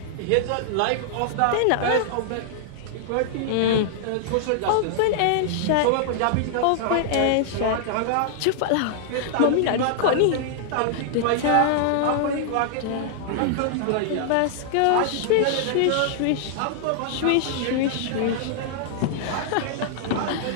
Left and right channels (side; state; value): both; different; correlation -0.01